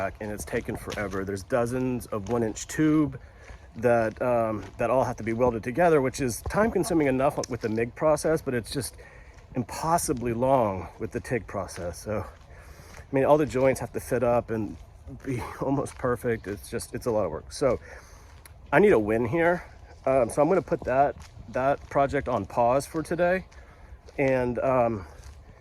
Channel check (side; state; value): both; identical; correlation 1.00